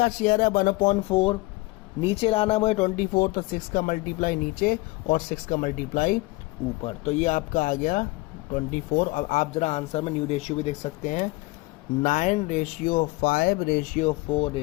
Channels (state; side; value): quieter; right; 22.3 dB